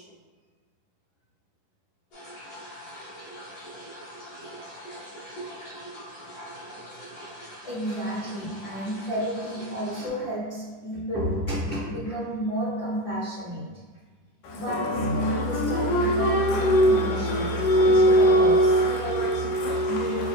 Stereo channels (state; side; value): late; right; 10 ms